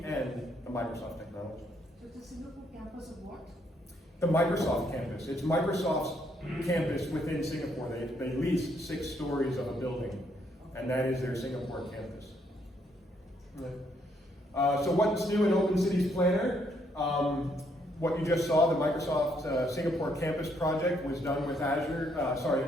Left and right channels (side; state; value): both; normal; correlation 0.72